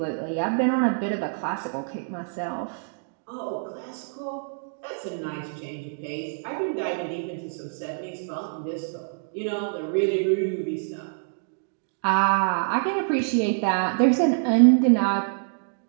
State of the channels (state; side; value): silent; left; digital silence